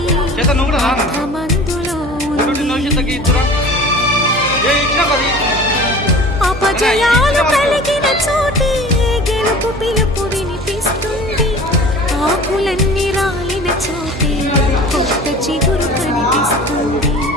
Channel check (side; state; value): right; noise; hum, 13 dB below the sound